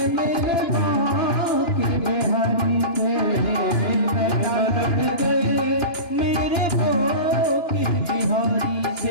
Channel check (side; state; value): right; late; 2.9 ms